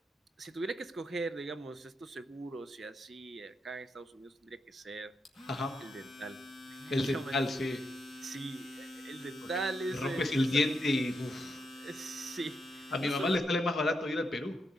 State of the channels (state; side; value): normal; both; correlation 0.83